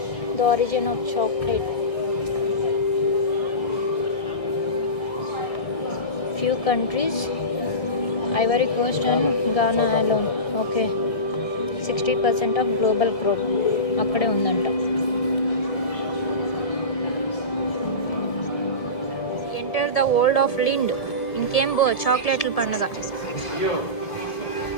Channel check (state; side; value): late; right; 1.7 ms